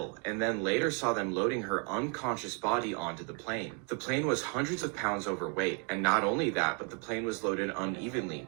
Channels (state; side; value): quieter; left; 37.5 dB